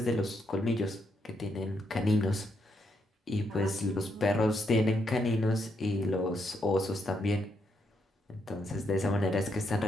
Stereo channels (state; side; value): normal; both; correlation 0.78